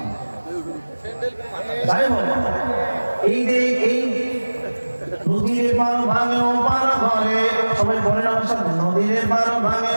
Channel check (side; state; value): both; inverted; correlation -1.00